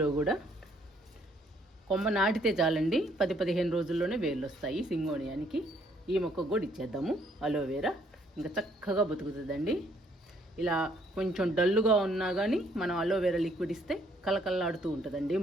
కూడా కొమ్మ నాటితే చాలండి, 10-15 రోజుల్లోనే వేర్లు వస్తాయి సింగోనియానికి. ఈ మొక్కకు కూడా ఇచ్చేద్దాము అలోవెరా, ఇంకా చక్కగా బతుకుతుందండి. ఇలా కొంచెం డల్లుగా ఉన్నా కానీ మనం అలోవెరా లిక్విడ్ ఇస్తే కలకల్లాడుతూ ఉంటుందండి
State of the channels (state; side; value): normal; both; correlation 0.66